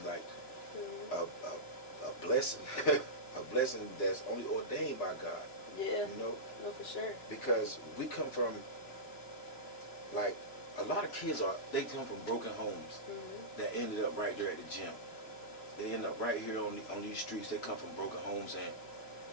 like a blessing, a blessing that's only ordained by God. Yeah. You know? No, for sure. Because we come from, like, a lot of kids they come from broken homes that ended up right there at the gym. They end up right here on these streets. They come from broken homes and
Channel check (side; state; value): right; late; 3.0 ms